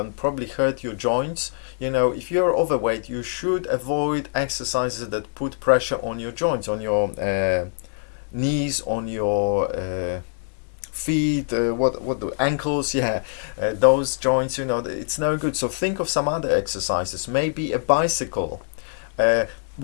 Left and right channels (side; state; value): right; silent; 63 dB below the other